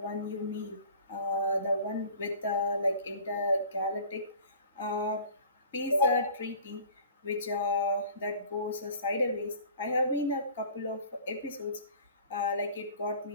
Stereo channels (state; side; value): inverted; both; correlation -0.46